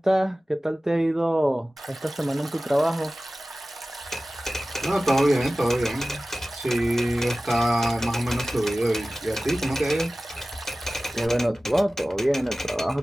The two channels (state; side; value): normal; both; correlation 0.96